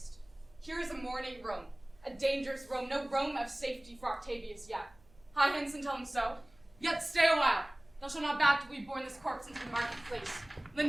Here is a mourning Rome, a dangerous Rome, no Rome of safety for Octavius yet. Hie hence and tell him so. Yet stay a while. Thou shalt not back till we borne this corpse into the marketplace. Lend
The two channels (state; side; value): noise; right; hum, 29 dB below the sound